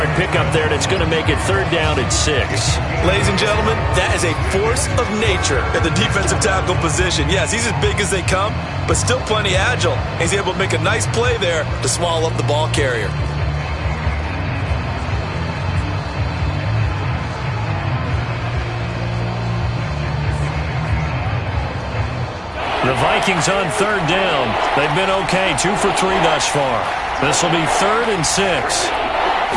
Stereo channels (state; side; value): identical; both; correlation 1.00